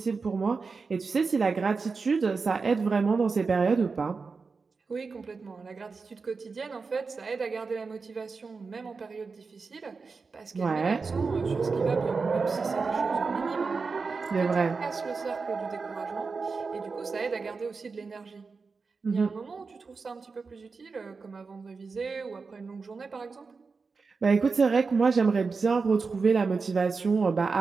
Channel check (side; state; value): left; quieter; 4.6 dB